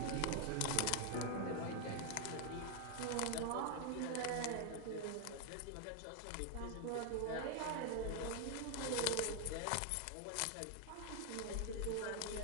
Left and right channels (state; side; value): different; both; correlation 0.00